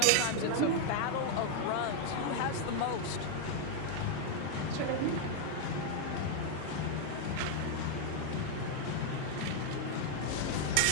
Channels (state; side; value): different; both; correlation 0.00